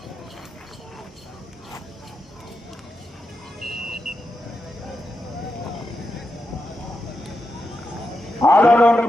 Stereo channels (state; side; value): normal; both; correlation 0.87